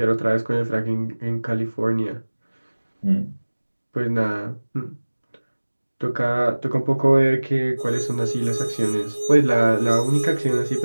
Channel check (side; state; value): both; inverted; correlation -1.00